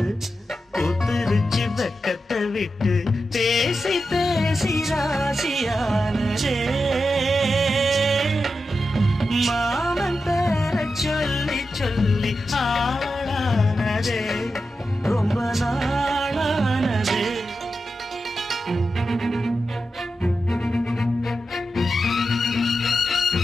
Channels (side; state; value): both; normal; correlation 0.89